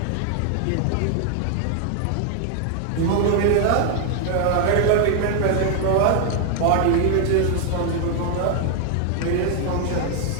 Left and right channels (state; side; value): different; both; correlation 0.00